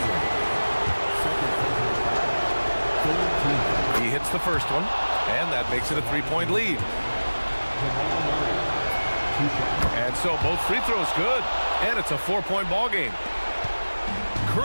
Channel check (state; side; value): inverted; both; correlation -1.00